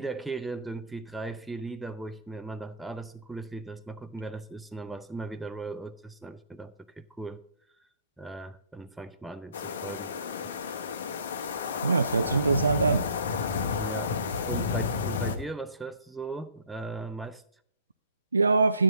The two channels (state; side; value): inverted; both; correlation -0.51